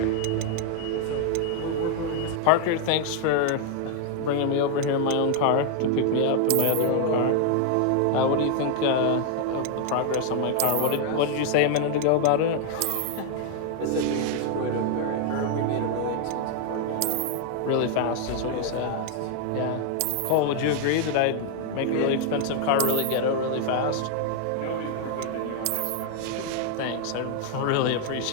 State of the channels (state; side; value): different; both; correlation 0.00